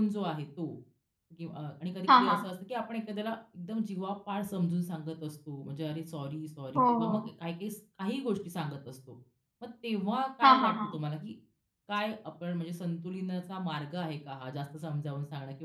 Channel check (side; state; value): both; identical; correlation 1.00